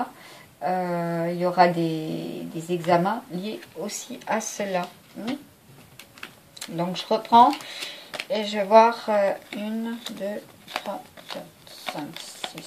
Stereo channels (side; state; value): both; identical; correlation 1.00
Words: Il y aura des examens liés aussi à cela. Donc je reprends et je vais voir 1, 2, 3, 4, 5,